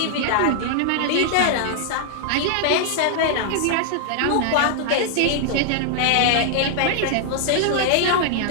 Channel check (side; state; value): both; different; correlation -0.01